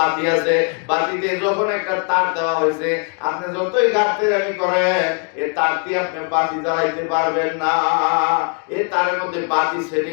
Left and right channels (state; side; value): quieter; right; 38.4 dB